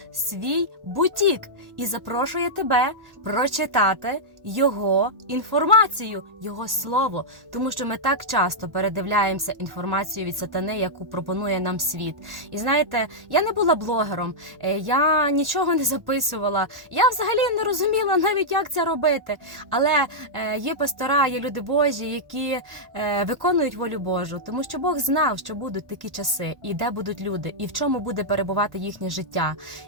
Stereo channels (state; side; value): late; left; 1.1 ms